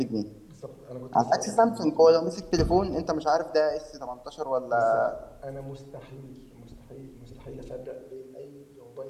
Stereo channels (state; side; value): identical; both; correlation 1.00